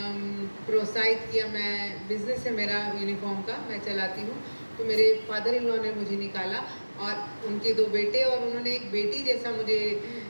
प्रोत्साहित किया, मैं बिज़नेस है मेरा यूनिफॉर्म का, मैं चलाती हूँ, तो मेरे फादर इन लॉ ने मुझे निकाला और उनके 2 बेटे और उन्होंने एक बेटी जैसा मुझे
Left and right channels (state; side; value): inverted; both; correlation -1.00